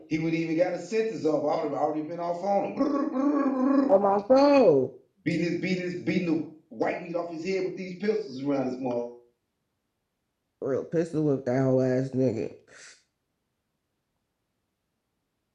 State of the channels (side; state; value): both; identical; correlation 1.00